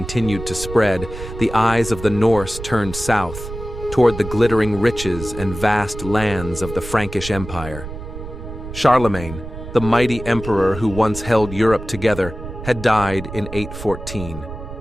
to spread, the eyes of the Norse turned south, toward the glittering riches and vast lands of the Frankish Empire. Charlemagne, the mighty emperor who once held Europe together, had died in 814.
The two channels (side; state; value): right; noise; rumble, 10 dB below the sound